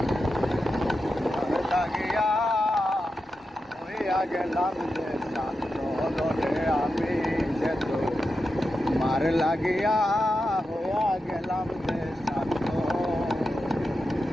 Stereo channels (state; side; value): normal; both; correlation 0.89